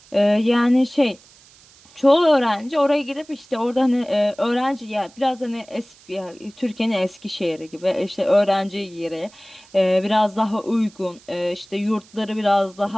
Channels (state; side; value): noise; right; hiss, 26 dB below the sound